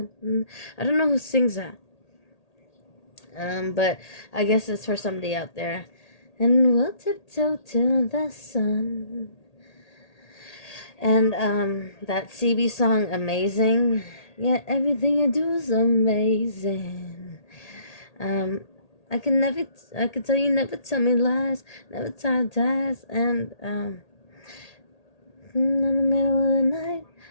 I don't know who sings that, but I guess it's for somebody out there. "And we'll tiptoe to the sun." And that CB song, "Amazing." Yeah, everything you do is amazing. I can tell you never tell me lies, never tell ties, and in the middle of the night,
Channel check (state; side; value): late; right; 1.8 ms